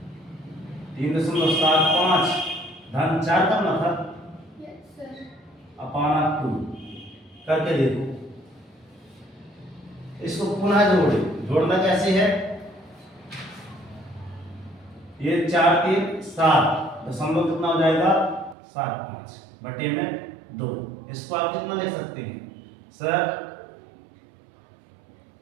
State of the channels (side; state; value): left; drops out; at 18.6 s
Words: 3.75 धन 4 करना था, अपॉन 2 करके देखो, इसको पुनः जोड़े, जोड़ना कैसे है, ये 4 3 7, दशमलव कितना हो जाएगा 7 5 बटे में 2, इसको आप कितना लिख सकते हैं सर,